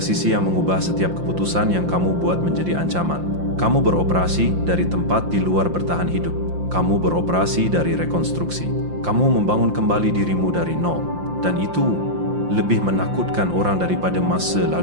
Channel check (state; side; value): late; left; 5.7 ms